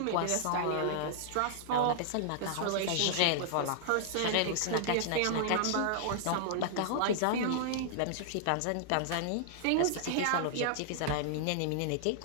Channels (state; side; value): different; both; correlation -0.01